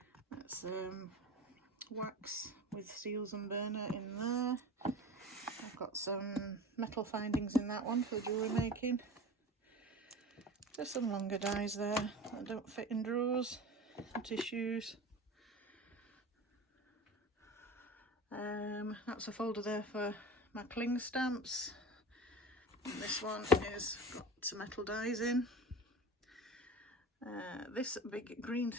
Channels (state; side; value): normal; both; correlation 0.34